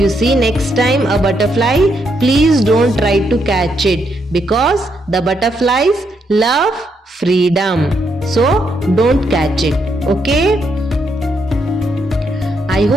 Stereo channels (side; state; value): both; normal; correlation 0.77